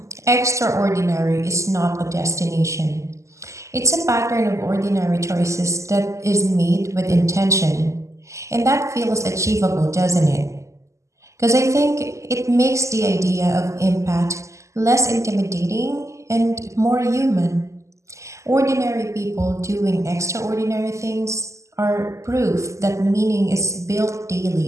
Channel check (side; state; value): left; late; 0.15 ms